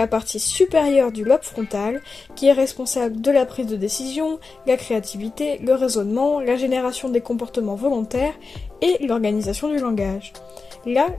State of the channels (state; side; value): quieter; right; 4.3 dB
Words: partie supérieure du lobe frontal, qui est responsable de la prise de décision, la créativité, le raisonnement, la génération des comportements volontaires et l'organisation du langage. Là,